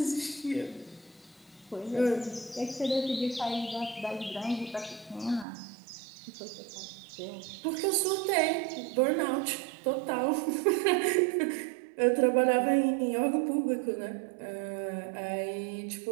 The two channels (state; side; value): drops out; left; at 5.5 s